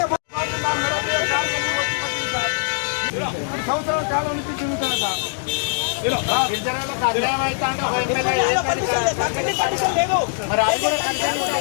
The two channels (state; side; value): silent; right; digital silence